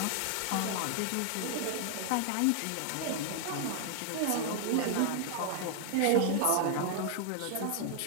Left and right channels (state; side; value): different; both; correlation 0.00